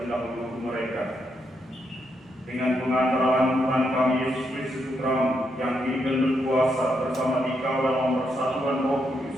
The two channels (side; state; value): both; normal; correlation 0.80